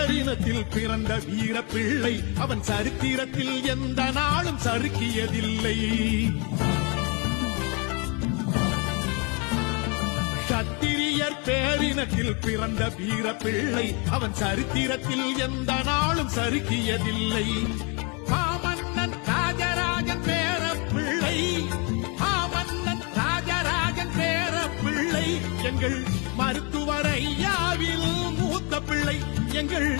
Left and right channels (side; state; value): right; quieter; 32.7 dB